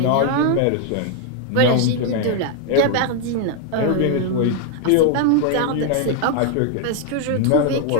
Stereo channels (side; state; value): both; different; correlation 0.00